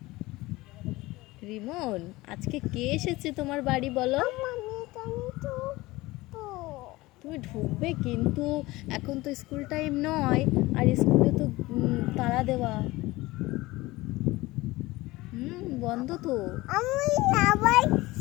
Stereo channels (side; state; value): right; quieter; 19.9 dB